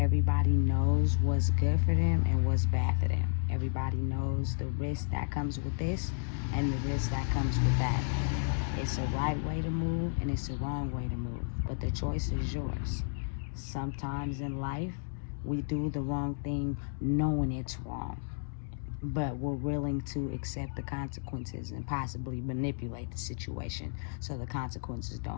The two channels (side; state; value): right; silent; digital silence